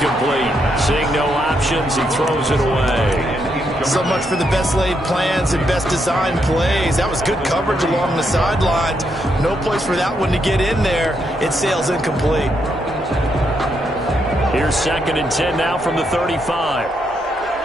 Seeing no options, he throws it away. So much for the best laid plans and best designed plays. That was good coverage along the sidelines. No place for that one to get in there. It sails incomplete. Here's 2nd and 10 now from the 35.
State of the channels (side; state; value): both; normal; correlation 0.79